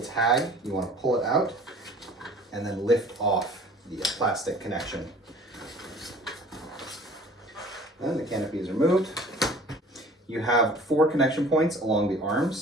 tag. You want to pull it out and then lift off the plastic connection. Then the canopy is removed. You have 4 connection points along the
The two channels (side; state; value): both; normal; correlation 0.48